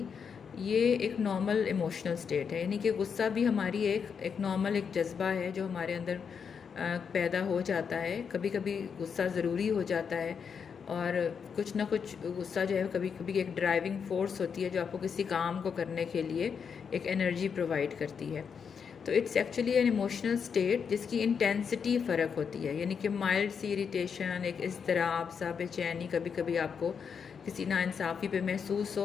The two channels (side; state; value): right; quieter; 6.5 dB